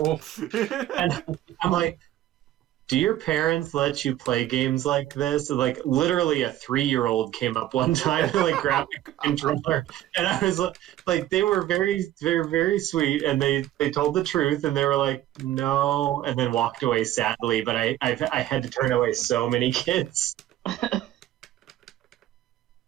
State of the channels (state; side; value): quieter; left; 13.5 dB